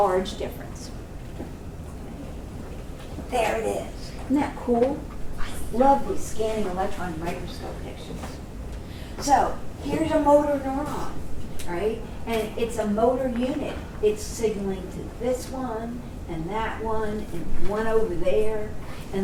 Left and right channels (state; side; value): identical; both; correlation 1.00